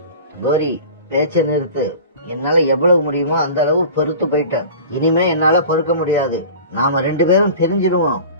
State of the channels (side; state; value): both; inverted; correlation -0.39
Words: கோரி, பேச்ச நிறுத்து. என்னால எவ்வளவு முடியுமோ அந்த அளவு பொறுத்து போயிட்டேன். இனிமே என்னால பொறுக்க முடியாது. நாம 2 பேரும் பிரிஞ்சிடுவோம்,